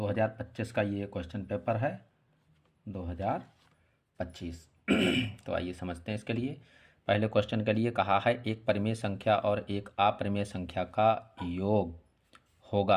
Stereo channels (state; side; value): identical; both; correlation 1.00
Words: का ये क्वेश्चन पेपर है 2025। तो आइए समझते हैं इसके लिए। पहले क्वेश्चन के लिए कहा है एक परिमेय संख्या और एक अपरिमेय संख्या का योग